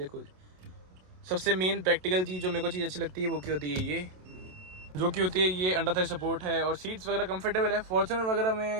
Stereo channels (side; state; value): left; late; 27 ms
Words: सबसे मेन प्रैक्टिकल चीज़ जो मेरे को चीज़ अच्छी लगती है वो क्या होती है, ये जो कि होती है ये अंडर थाई सपोर्ट है, और सीट्स वगैरह कंफर्टेबल है। फॉर्च्यूनर वगैरह में